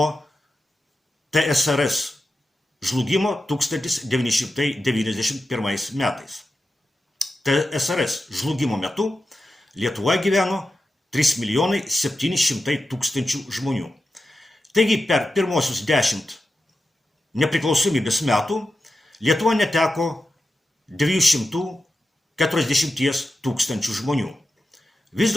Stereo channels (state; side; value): normal; both; correlation 0.91